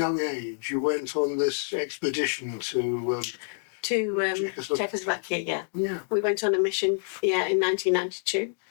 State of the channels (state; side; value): silent; right; digital silence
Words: age, you went on this expedition to Czechoslovakia, yeah. We went on a mission, in 1992,